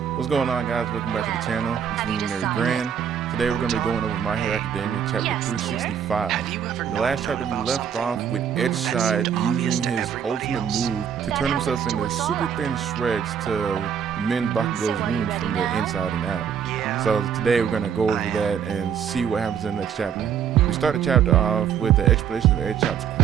What's going on, guys? Welcome back to the channel. It's Luminary Grand. Today we're going to be going over My Hero Academia chapter 365. In the last chapter we left off with Edgeshot using his ultimate move to turn himself into super thin shreds to mend Bakugo's wounds from the inside and out. So today we're going to go over that and see what happens in the next chapter. We start the chapter off with the explanation of Edgeshot's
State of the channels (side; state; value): left; quieter; 8.1 dB